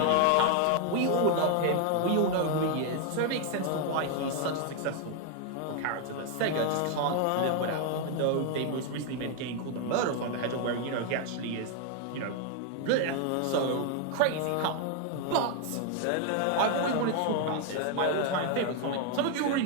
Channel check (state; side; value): different; both; correlation 0.00